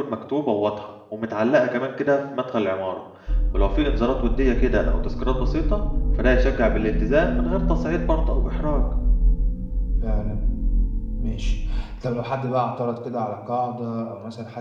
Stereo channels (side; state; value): both; identical; correlation 1.00